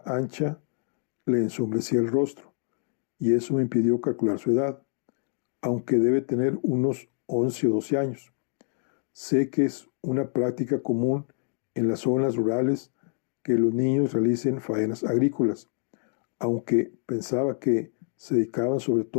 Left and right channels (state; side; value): silent; right; 60 dB below the other